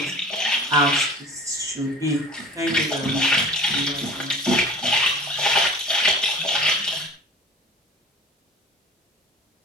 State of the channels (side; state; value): both; normal; correlation 0.40